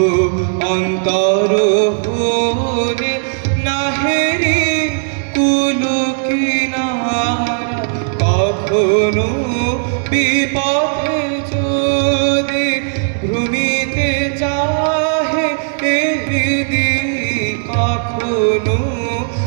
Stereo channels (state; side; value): silent; left; 66 dB below the other